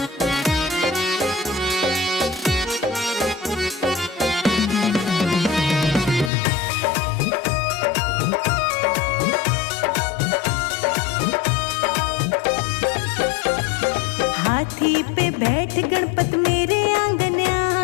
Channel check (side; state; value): right; drops out; at 6.3 s